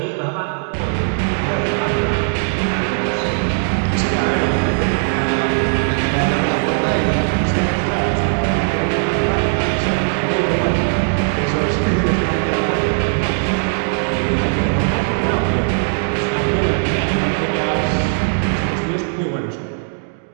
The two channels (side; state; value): left; silent; 59 dB below the other